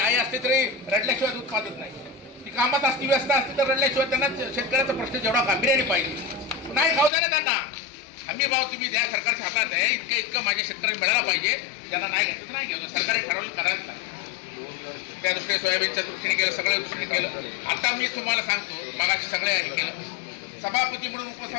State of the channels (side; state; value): right; drops out; at 7.1 s